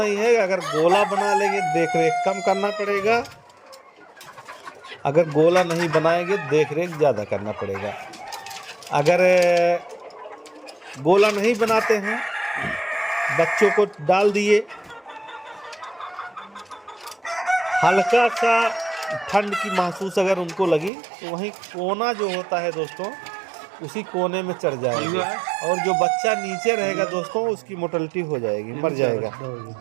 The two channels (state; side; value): drops out; left; at 20.9 s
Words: है। अगर गोला बना लेंगे देख रेख कम करना पड़ेगा, अगर गोला नहीं बनाएंगे देख रेख ज़्यादा करना पड़ेगा। अगर गोला नहीं बनाते हैं, बच्चों को डाल दिए, हल्का सा ठंड की महसूस अगर उनको लगी तो वहीं कोना जो होता है दोस्तों, उसी कोने में चढ़ जाएगा, और जो बच्चा नीचे रहेगा दोस्तों उसकी मोर्टेलिटी हो जाएगी, मर जाएगा।